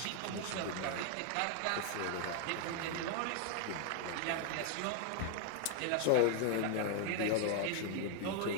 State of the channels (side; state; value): both; different; correlation 0.00